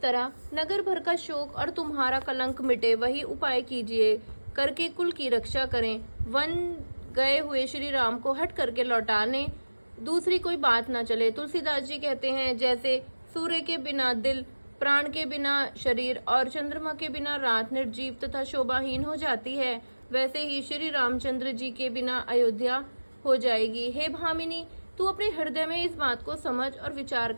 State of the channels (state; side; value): inverted; both; correlation -1.00